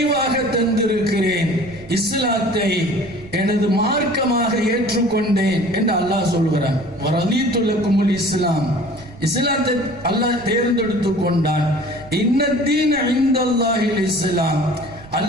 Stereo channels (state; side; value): noise; right; rumble, 19 dB below the sound